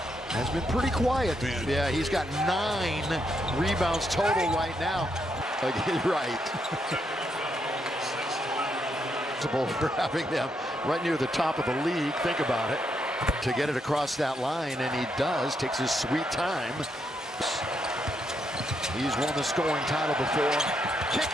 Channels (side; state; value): both; normal; correlation 0.79